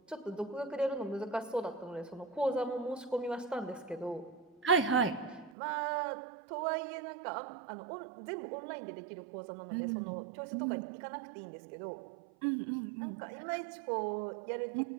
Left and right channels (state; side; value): drops out; left; at 5.5 s